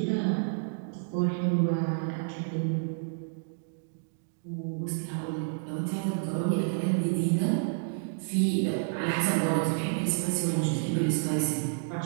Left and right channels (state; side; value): silent; left; digital silence